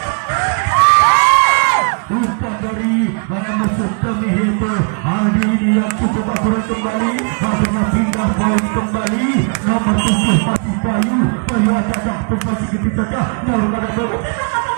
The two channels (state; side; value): quieter; left; 39.6 dB